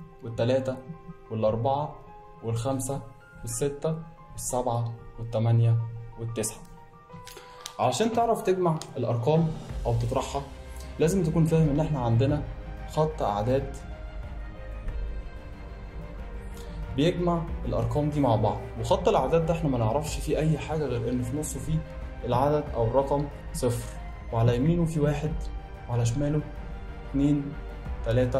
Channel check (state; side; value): identical; both; correlation 1.00